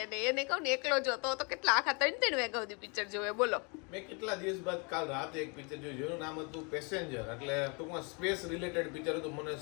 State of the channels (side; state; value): right; quieter; 33.2 dB